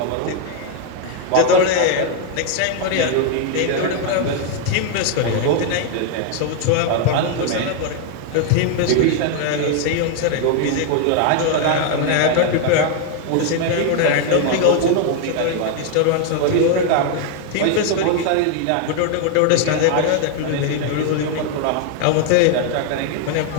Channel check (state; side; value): different; both; correlation 0.00